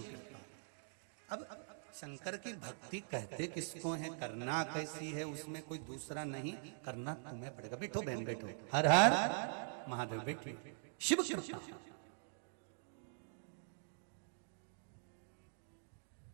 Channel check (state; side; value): silent; left; digital silence